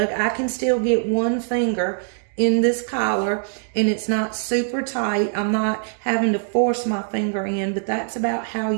I can still get 1 finger in this collar and it's not super tight. I'm not having to force my finger in, but that's about how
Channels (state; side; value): silent; left; digital silence